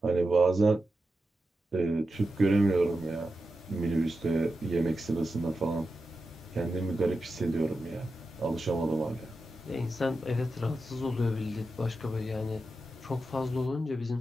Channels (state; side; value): normal; both; correlation 0.90